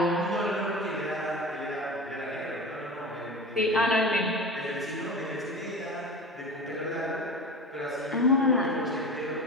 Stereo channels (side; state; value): both; normal; correlation 0.31